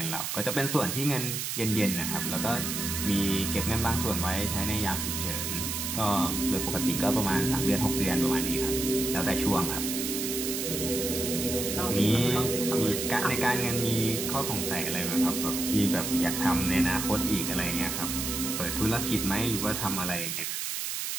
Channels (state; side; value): noise; right; hiss, 3 dB below the sound